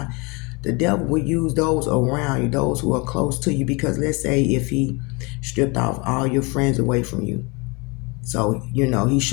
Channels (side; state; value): right; quieter; 28.6 dB